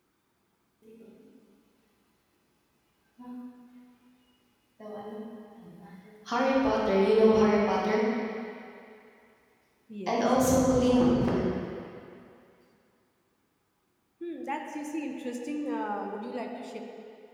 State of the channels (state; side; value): identical; both; correlation 1.00